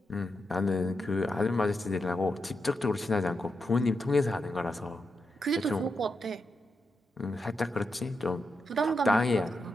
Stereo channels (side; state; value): both; normal; correlation 0.86